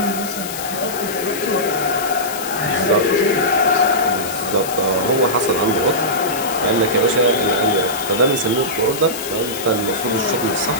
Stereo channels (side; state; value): left; noise; hiss, 9 dB below the sound